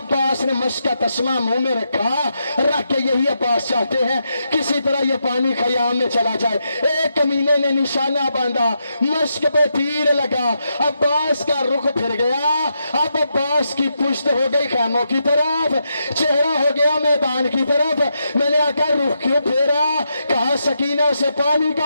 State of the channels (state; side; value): inverted; both; correlation -0.83